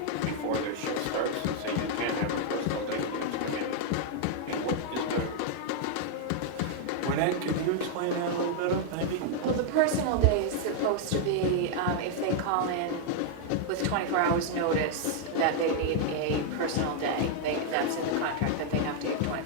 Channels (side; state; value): both; different; correlation -0.01